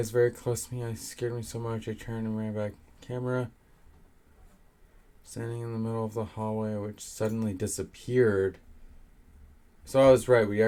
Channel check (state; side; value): identical; both; correlation 1.00